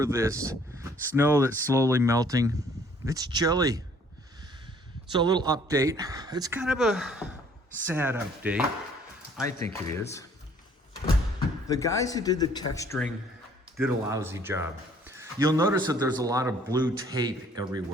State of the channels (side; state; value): both; normal; correlation 0.59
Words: this snow that's slowly melting, it's chilly. So a little update. It's kind of a sad update. I think it is. The guys who did the texturing did a lousy job. You'll notice that there's a lot of blue tape